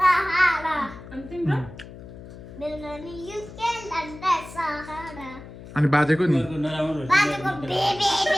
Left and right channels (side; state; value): left; noise; hum, 15 dB below the sound